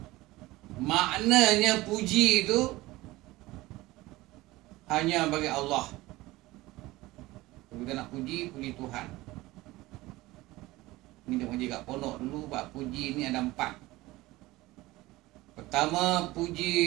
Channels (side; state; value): left; quieter; 19.3 dB